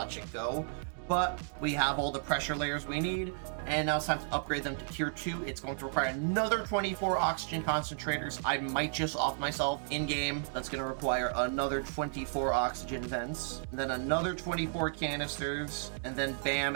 it go. But we have all the pressure layers we need, and now it's time to upgrade them to tier 2. It's going to require another 24 oxygen concentrators. I might just off myself in-game. That's going to require another 24 oxygen vents, and then another 24 canisters, and then bam,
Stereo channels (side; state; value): left; silent; digital silence